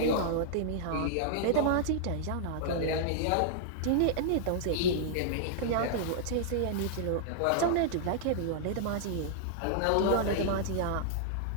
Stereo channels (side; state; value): both; different; correlation -0.01